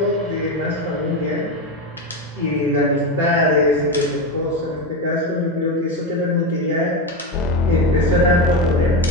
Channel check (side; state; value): both; normal; correlation 0.15